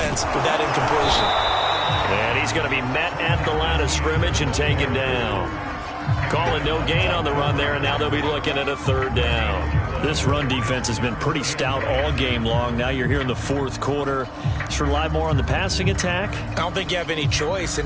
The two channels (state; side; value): identical; both; correlation 1.00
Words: with that incompletion. And he's going to be met at the line of scrimmage and taken down. Calling no gain on the run there, and now they'll be looking at a third down. This run defense has been pretty stout all game long. Now you're here in the fourth quarter. Should rely more on the passing attack? I don't think you have any choice, and